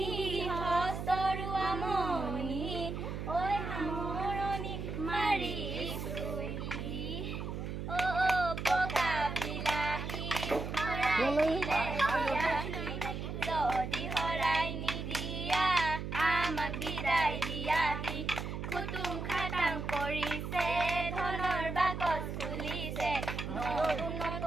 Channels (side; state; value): right; noise; hum, 5 dB below the sound